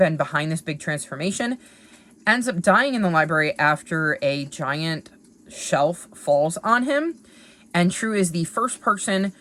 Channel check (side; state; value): both; identical; correlation 1.00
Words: behind this big transformation, ends up dying in the library after a giant shelf falls on him, and True is the first person